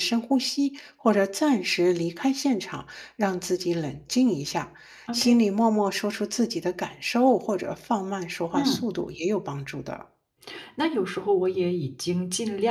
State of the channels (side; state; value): both; identical; correlation 1.00